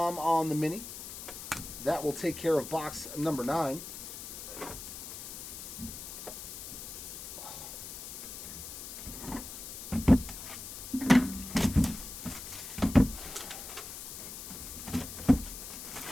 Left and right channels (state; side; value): noise; left; hiss, 9 dB below the sound